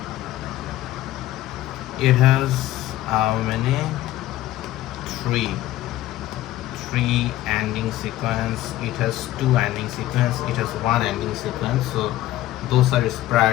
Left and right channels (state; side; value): quieter; right; 15.0 dB